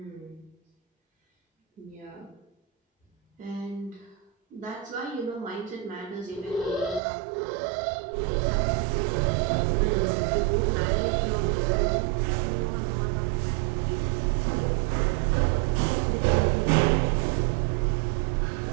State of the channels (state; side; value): drops out; left; at 7.0 s